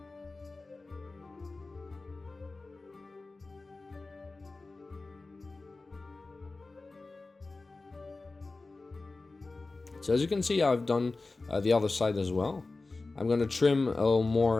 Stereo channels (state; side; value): quieter; right; 3.5 dB